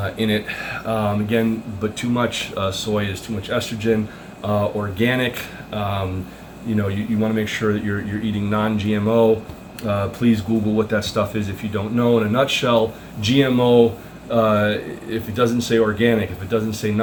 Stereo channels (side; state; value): both; identical; correlation 1.00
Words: in it. Again, but too much soy is too much estrogen. Organic, you want to make sure that you're eating non-GMO. Please Google what that stuff is if you don't know. In a nutshell, GMO, if it doesn't say organic, if it doesn't say